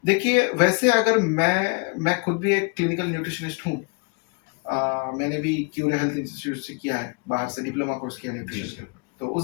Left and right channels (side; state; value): right; quieter; 34.3 dB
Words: देखिए वैसे अगर मैं खुद भी एक क्लिनिकल न्यूट्रिशनिस्ट हूँ। मैंने भी क्यूरे हेल्थ इंस्टीट्यूट से किया है, बाहर से डिप्लोमा कोर्स किया न्यूट्रिशन के ऊपर। तो